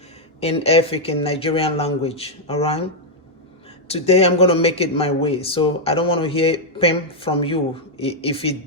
in Efik in Nigerian language, all right? Today I'm going to make it my way, so I don't want to hear pim from you if it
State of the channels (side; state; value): both; normal; correlation -0.02